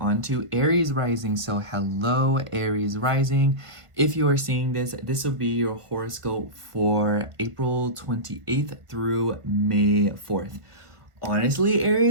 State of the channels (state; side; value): late; left; 1.4 ms